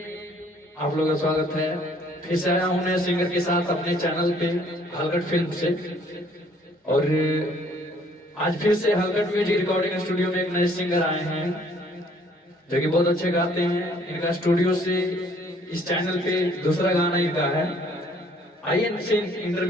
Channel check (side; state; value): both; normal; correlation 0.60